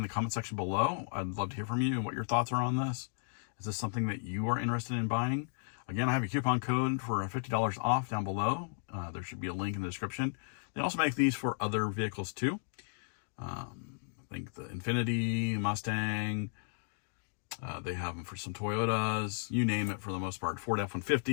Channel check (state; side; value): silent; right; digital silence